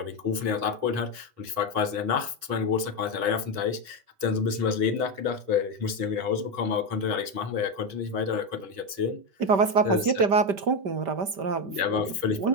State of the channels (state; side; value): late; left; 4.9 ms